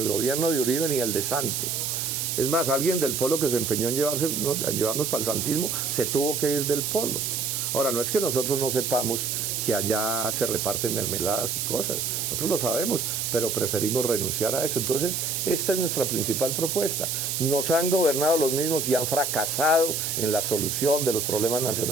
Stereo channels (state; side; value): noise; right; hiss, 1 dB below the sound